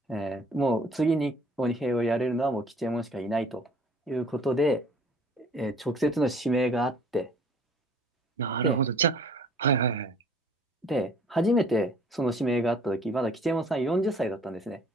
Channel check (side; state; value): both; normal; correlation 0.54